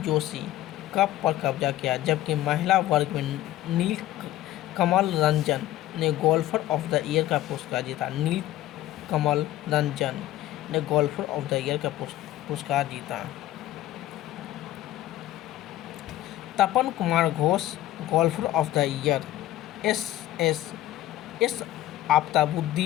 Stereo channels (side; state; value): right; quieter; 14.4 dB